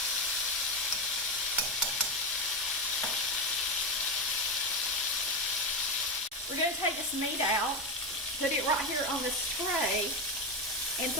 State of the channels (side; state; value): both; normal; correlation 0.12